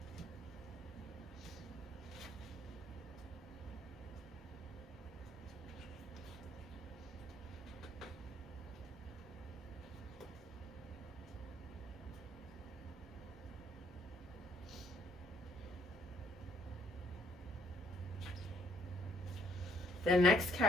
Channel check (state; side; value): normal; both; correlation 0.67